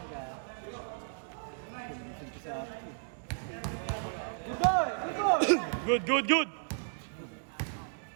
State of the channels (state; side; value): silent; left; digital silence